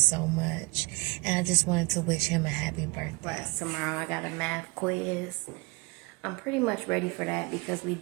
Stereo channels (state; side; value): quieter; left; 27.8 dB